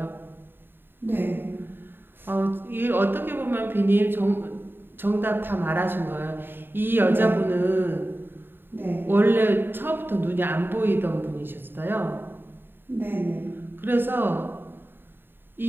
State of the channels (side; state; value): left; late; 0.098 ms